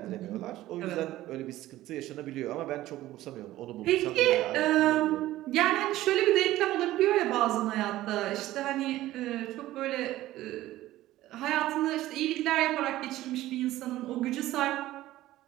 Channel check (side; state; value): left; quieter; 15.5 dB